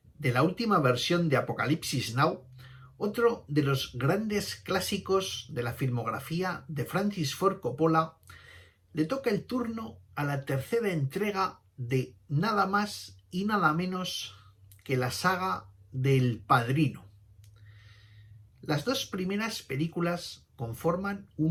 de la última versión de Apocalipsis Now, otro de los grandes clásicos de la filmografía de Francis Ford Coppola, le toca el turno a la tercera entrega de nada más y nada menos que la saga del Padrino. Las dos primeras películas conforman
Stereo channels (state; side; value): identical; both; correlation 1.00